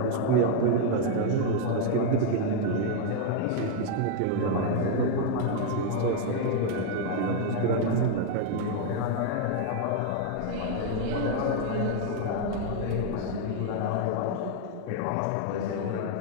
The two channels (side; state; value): both; different; correlation 0.00